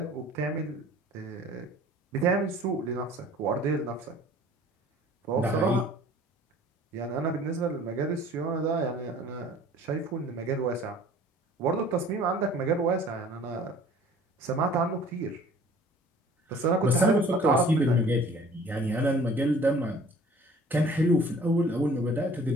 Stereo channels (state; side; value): normal; both; correlation 0.50